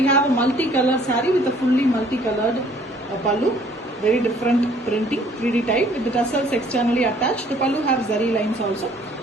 have a multicolored saree with a fully multicolored pallu, very different printing, 3D type with the tassels externally attached. The pallu have zari lines also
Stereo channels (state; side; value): normal; both; correlation 0.59